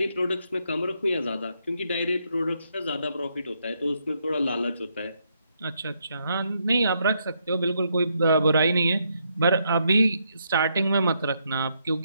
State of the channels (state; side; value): inverted; both; correlation -0.77